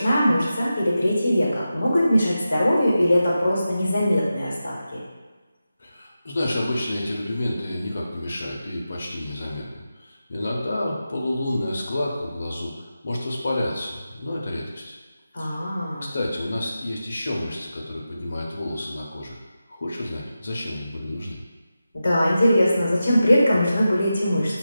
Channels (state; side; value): inverted; both; correlation -0.92